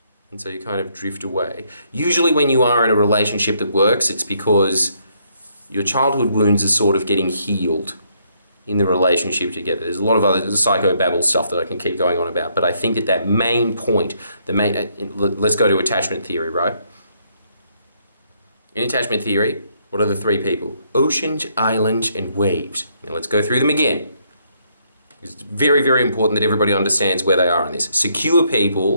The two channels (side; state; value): both; inverted; correlation -0.72